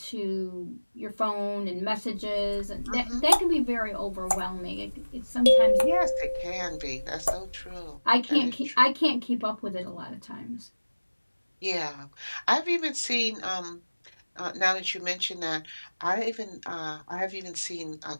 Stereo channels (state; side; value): inverted; both; correlation -1.00